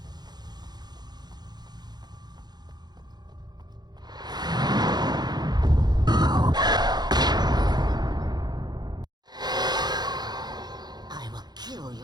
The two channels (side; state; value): left; late; 0.20 ms